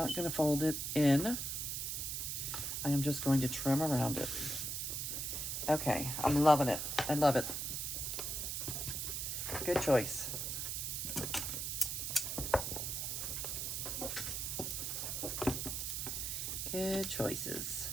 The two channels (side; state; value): right; noise; hiss, 2 dB below the sound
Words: going to fold it in. I am just going to trim around it. Okay, I'm loving it. I love it. Good choice. Good choices.